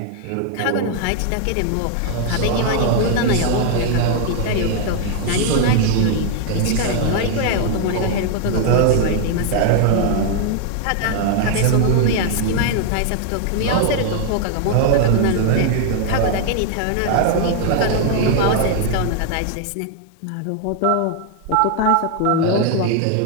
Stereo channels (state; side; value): different; both; correlation 0.00